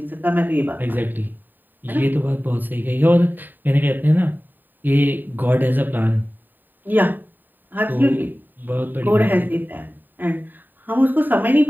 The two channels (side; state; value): left; late; 0.090 ms